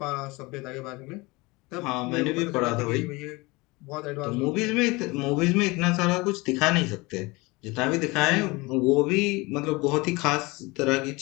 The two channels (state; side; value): quieter; right; 24.0 dB